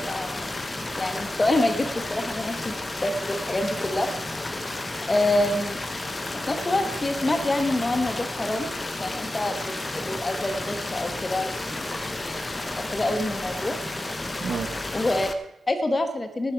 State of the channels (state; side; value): normal; both; correlation 0.93